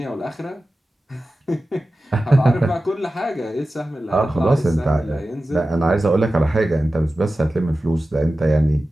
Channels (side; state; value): both; normal; correlation 0.94